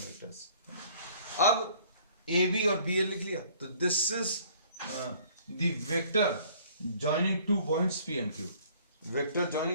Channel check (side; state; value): both; inverted; correlation -0.56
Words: अब ए बी और बी ए लिख लिया, तो this is the vector joining two points P and Q। Vector